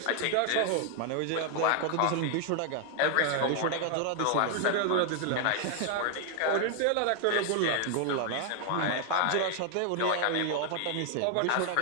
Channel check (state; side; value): different; both; correlation 0.00